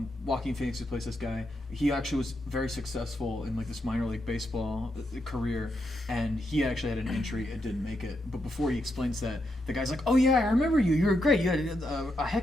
Joaquin Phoenix, who plays this guy, he actually was very successful in like this minor league baseball career, and he actually had an injury and didn't make it. But before he explains that, the guy's like, "Oh yeah, I remember you. You were great. You had a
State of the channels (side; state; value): both; normal; correlation 0.82